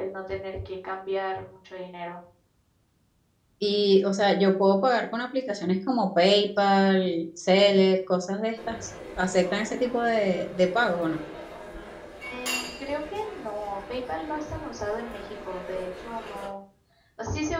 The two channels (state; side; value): identical; both; correlation 1.00